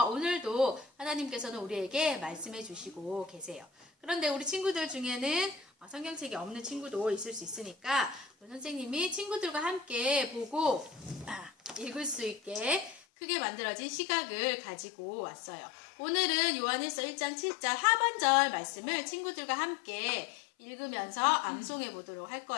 오늘도 하나님께서는 우리에게 말씀해 주시고 계세요. 그런데 우리 친구들 중에는 성경책이 없는 친구도 있을 수 있으니까 우리 선생님이 친구들과 함께 보고 읽을 수 있게 크게 만들어진 시각을 가지고 왔어요. 오늘은 요한일서 1장 7절 하반절 말씀을 친구들과 함께 읽으면서 암송해 보도록 할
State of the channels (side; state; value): right; drops out; at 13.0 s